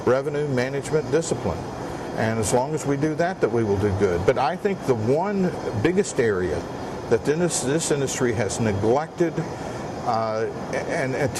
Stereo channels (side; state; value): both; identical; correlation 1.00